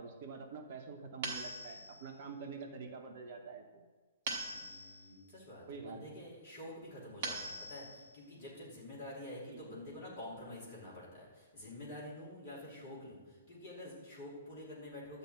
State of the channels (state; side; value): inverted; both; correlation -0.40